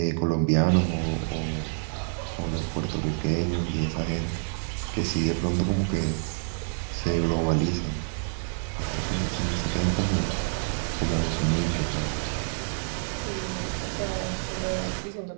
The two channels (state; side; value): silent; left; 60 dB below the other